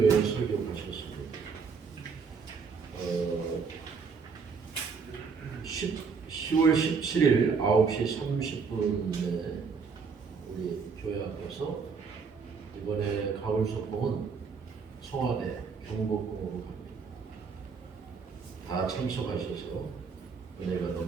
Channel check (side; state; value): left; quieter; 5.4 dB